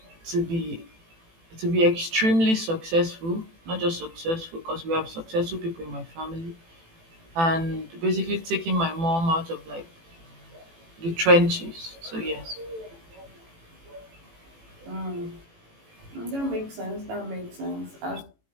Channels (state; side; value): late; left; 18 ms